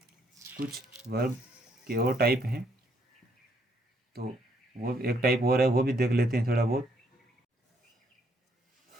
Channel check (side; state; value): both; normal; correlation 0.71